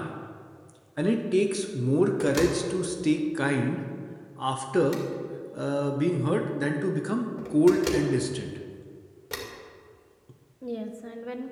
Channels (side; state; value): both; identical; correlation 1.00